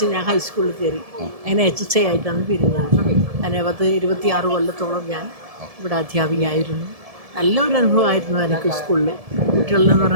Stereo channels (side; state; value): left; late; 1.7 ms